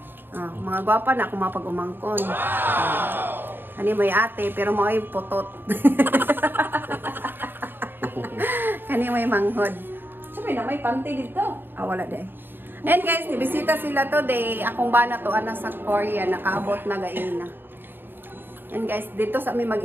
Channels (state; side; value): late; left; 0.096 ms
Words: Mga gwapa na kung mapag-umangkon. Ano may ate pero mo ay putot. Kani may manghod. Sabi na may panty dito. Wala deh. And guys, nibisita sila today. Akong bana to ana sa Korea. Nakaabot na gaina. And guys, dito sa amin